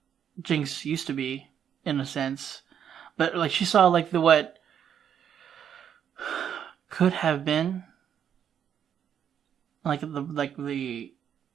Jinx used to be, in a sense. But, like, she saw, like, what could have been. Like the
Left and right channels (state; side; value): quieter; left; 8.8 dB